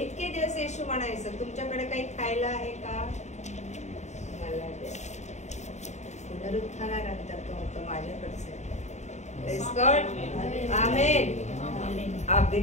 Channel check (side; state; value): right; late; 0.34 ms